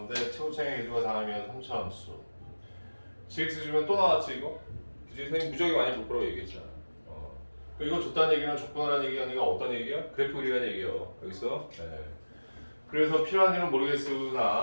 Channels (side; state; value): both; inverted; correlation -1.00